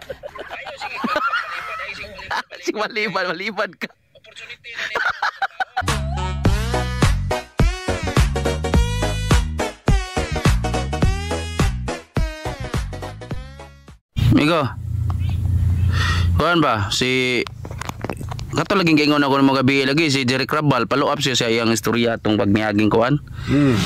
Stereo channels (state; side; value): identical; both; correlation 1.00